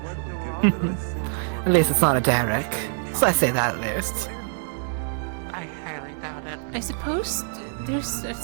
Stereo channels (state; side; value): silent; left; digital silence